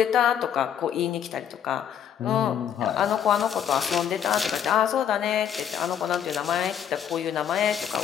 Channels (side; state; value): right; quieter; 9.0 dB